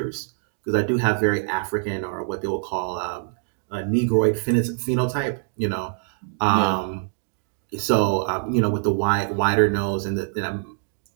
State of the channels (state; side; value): silent; left; digital silence